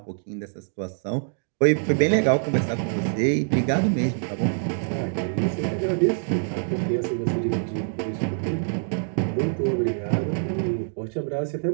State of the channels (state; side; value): silent; left; digital silence